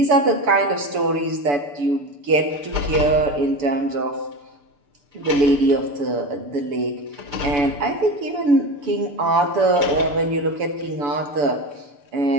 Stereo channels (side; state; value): left; late; 7.0 ms